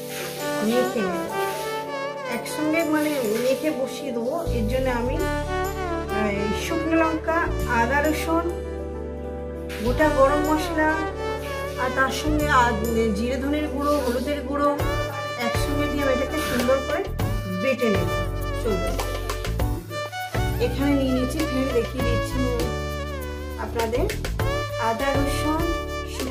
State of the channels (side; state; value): both; identical; correlation 1.00